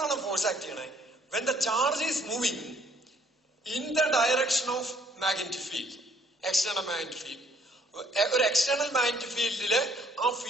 ഫോഴ്സ് ആക്ട് ചെയ്യണേ? When the charge is moving in the direction of magnetic field, external magnetic field. ഒരു എക്സ്റ്റേണൽ മാഗ്നറ്റിക് ഫീൽഡില് ആ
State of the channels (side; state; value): both; normal; correlation 0.64